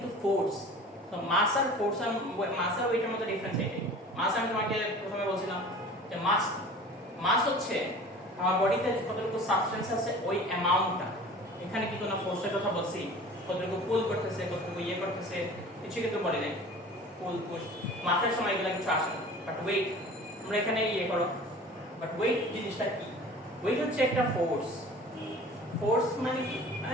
ফোর্স। তো মাস আর ফোর্স আর মাস আর ওয়েটের মধ্যে ডিফারেন্স এটাই। মাস আমি তোমাকে প্রথমে বলছিলাম যে মাস মাস হচ্ছে আমার বডিতে কতটুকু সাবস্টেন্স আছে ওই অ্যামাউন্টটা। এখানে কি কোনো ফোর্সের কথা বলছি, কতটুকু পুল করতেছে কতটুকু করতেছে কিছু কিন্তু বলি নাই। পুল পুশ মাসের সময় এগুলো কিছু আসে না, বাট ওয়েট আমরা এখানে করো। বাট ওয়েট জিনিসটা কি? ওয়েট হচ্ছে একটা ফোর্স। ফোর্স মানে কি?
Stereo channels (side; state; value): both; normal; correlation 0.42